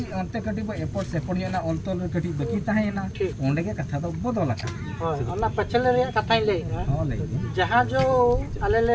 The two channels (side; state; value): both; identical; correlation 1.00